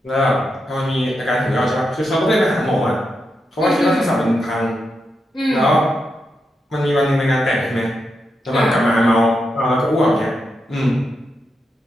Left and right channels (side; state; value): both; normal; correlation 0.85